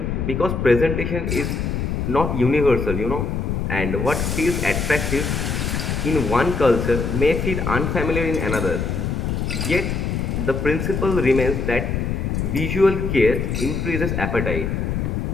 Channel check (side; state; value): left; noise; rumble, 1 dB below the sound